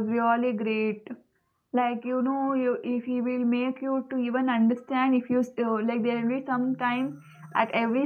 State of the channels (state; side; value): identical; both; correlation 1.00